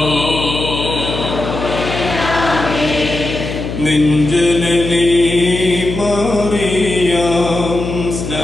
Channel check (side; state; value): left; noise; hum, 6 dB below the sound